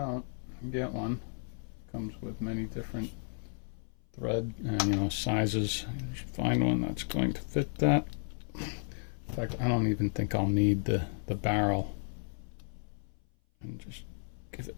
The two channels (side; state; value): right; silent; 55 dB below the other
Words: get one. Comes with many different thread and sizes. You should find one that's going to fit that. In fact, I don't even think I'll need the barrel. And just give it